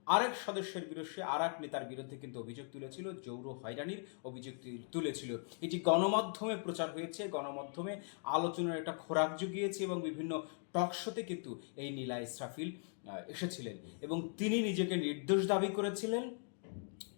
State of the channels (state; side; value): silent; right; 51 dB below the other